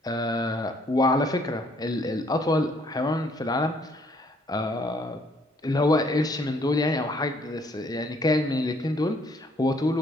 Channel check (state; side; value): normal; both; correlation 0.65